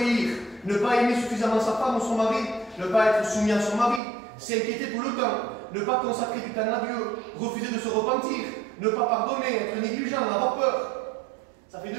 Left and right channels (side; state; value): left; drops out; at 4.0 s